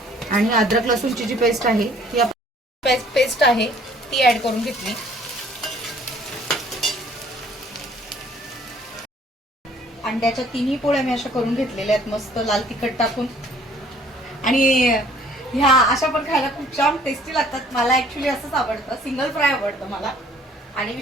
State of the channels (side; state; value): both; normal; correlation 0.57